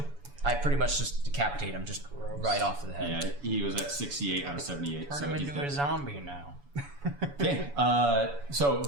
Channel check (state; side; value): late; left; 7.1 ms